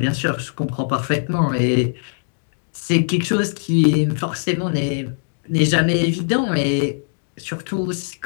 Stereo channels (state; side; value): silent; right; digital silence